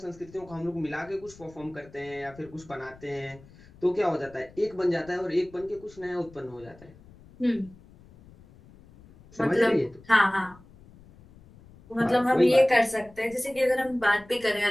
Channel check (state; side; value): noise; left; rumble, 23 dB below the sound